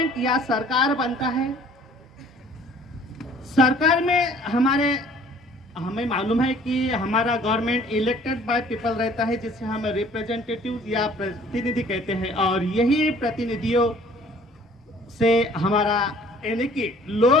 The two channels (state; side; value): normal; both; correlation 0.54